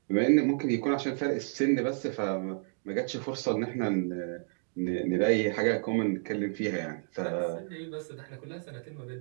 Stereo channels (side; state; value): left; silent; 57 dB below the other